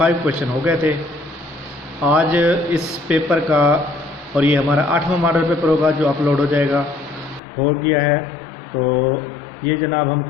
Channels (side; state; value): right; drops out; at 7.4 s